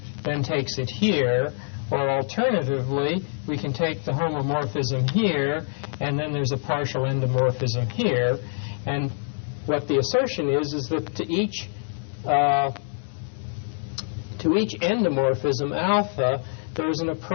then takes it here, or alternatively, we can take the homomorphism here, and then there's a partial endomorphism here. And what the assertion is that to each endomorphism alpha, there's an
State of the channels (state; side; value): silent; right; 62 dB below the other